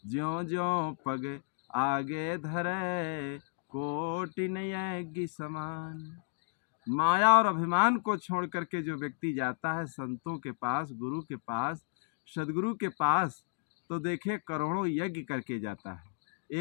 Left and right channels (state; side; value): silent; right; digital silence